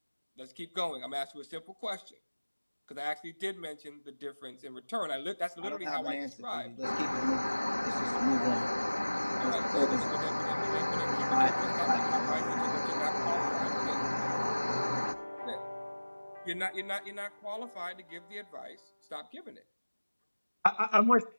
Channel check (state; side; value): inverted; both; correlation -1.00